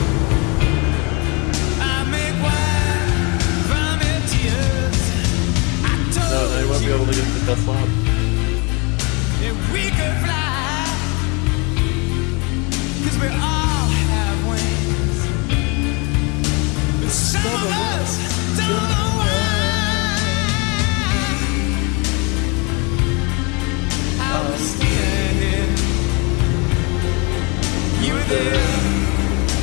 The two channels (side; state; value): right; quieter; 30.5 dB